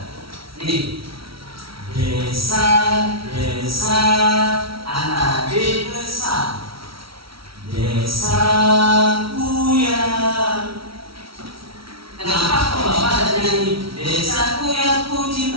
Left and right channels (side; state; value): left; late; 0.75 ms